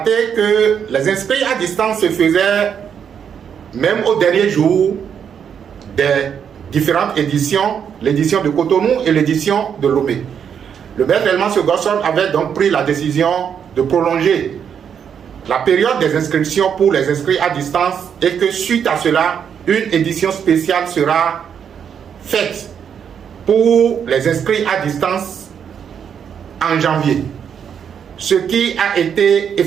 que les inscrits à distance se faisaient même au dernier jour des différentes éditions, l'édition de Cotonou et l'édition de Lomé. Le maître Elman Gosson avait donc pris la décision de prolonger la période des inscriptions pour les inscrits à distance et que suite à cela, une édition spéciale sera faite pour les inscrits à distance en janvier, ce qui a été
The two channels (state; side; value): quieter; left; 7.8 dB